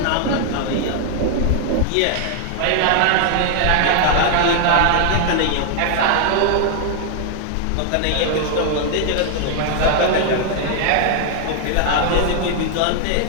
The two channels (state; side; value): different; both; correlation 0.00